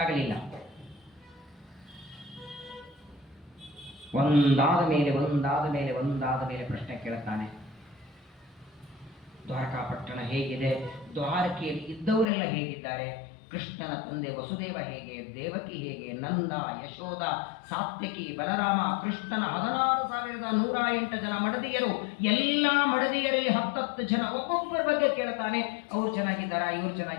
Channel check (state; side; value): drops out; right; at 12.2 s